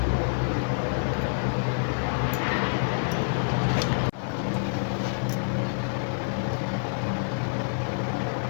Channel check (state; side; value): silent; right; digital silence